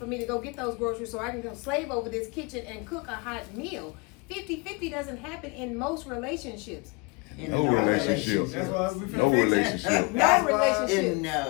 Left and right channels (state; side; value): quieter; right; 29.0 dB